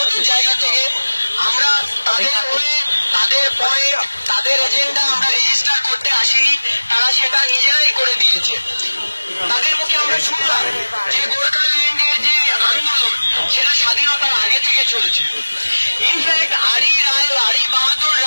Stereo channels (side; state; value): both; inverted; correlation -1.00